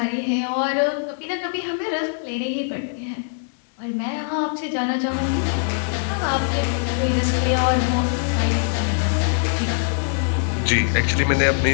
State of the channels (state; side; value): silent; right; digital silence